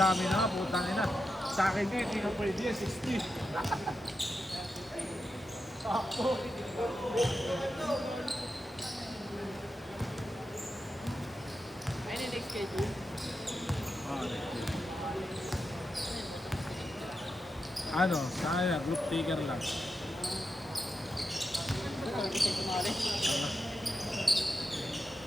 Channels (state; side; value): normal; both; correlation 0.88